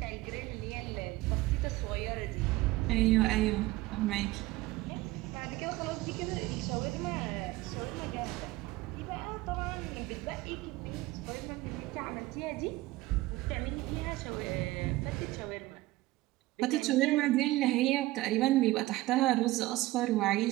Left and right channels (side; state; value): left; quieter; 18.4 dB